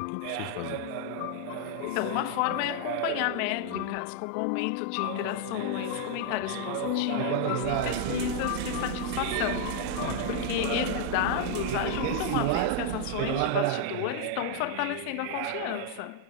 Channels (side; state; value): both; different; correlation 0.00